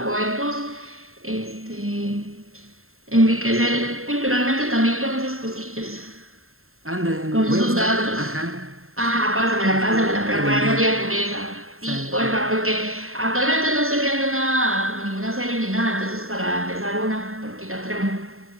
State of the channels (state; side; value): late; left; 0.61 ms